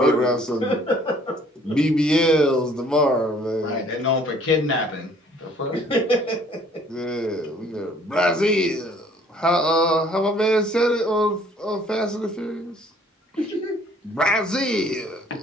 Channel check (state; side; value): normal; both; correlation 0.58